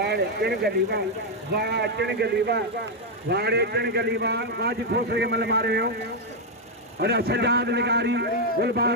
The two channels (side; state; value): both; normal; correlation 0.01